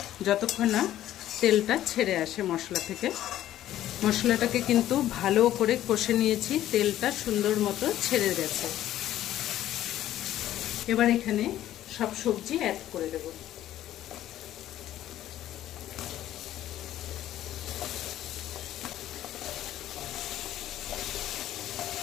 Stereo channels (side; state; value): right; quieter; 12.9 dB